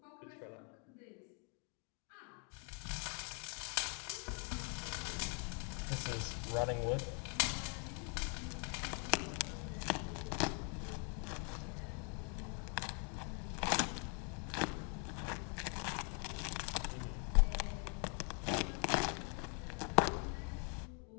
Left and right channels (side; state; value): right; quieter; 38.8 dB